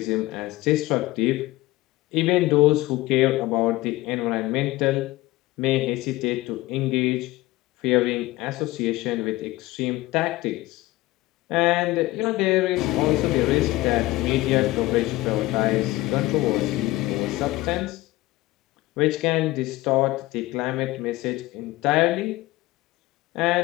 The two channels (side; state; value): right; quieter; 18.6 dB